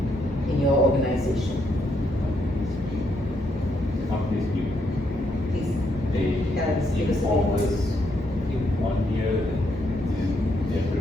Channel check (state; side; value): normal; both; correlation 0.76